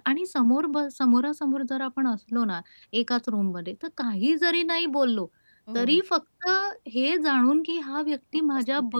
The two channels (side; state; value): both; inverted; correlation -1.00